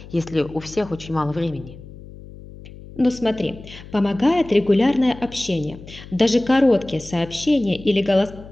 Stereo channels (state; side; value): noise; left; hum, 17 dB below the sound